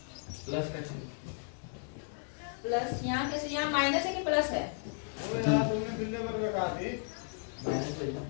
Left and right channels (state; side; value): silent; right; 55 dB below the other